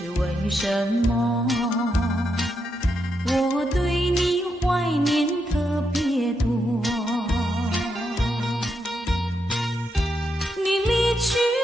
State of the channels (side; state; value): both; normal; correlation 0.82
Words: 为什么，我对你怀念特别多。你离去